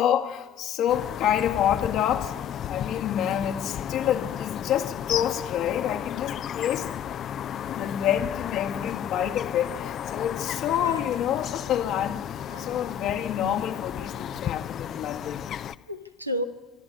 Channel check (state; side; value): quieter; right; 9.4 dB